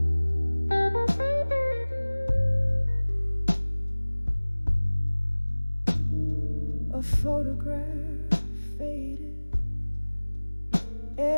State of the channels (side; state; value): both; inverted; correlation -1.00